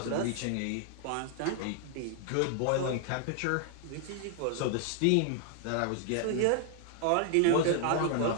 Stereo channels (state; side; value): different; both; correlation 0.00